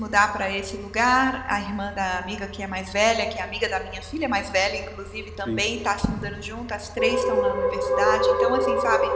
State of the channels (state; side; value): identical; both; correlation 1.00